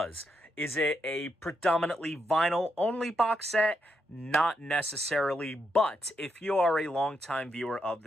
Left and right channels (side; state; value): both; normal; correlation 0.81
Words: Is it a predominantly vinyl-only box set? Not necessarily, but if you are a longtime viewer of